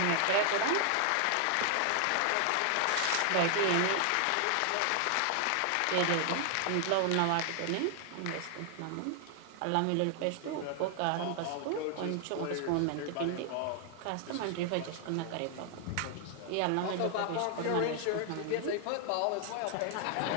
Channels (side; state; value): both; different; correlation 0.00